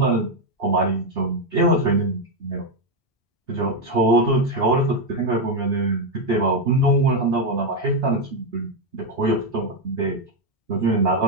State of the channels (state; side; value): normal; both; correlation 0.04